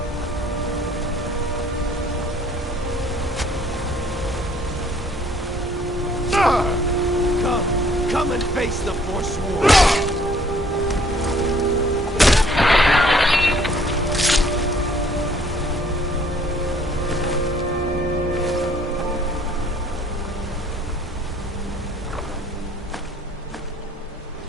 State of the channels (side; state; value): both; normal; correlation 0.59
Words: Come and face the Forsworn.